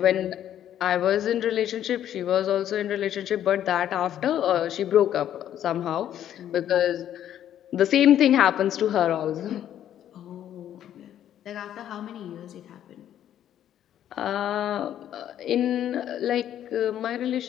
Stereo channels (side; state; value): right; quieter; 10.8 dB